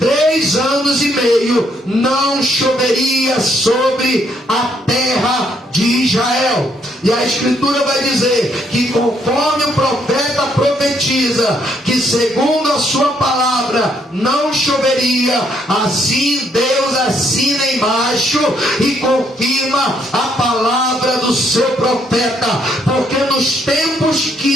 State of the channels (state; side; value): normal; both; correlation 0.72